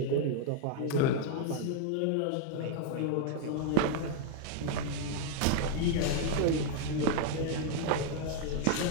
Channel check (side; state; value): both; different; correlation 0.00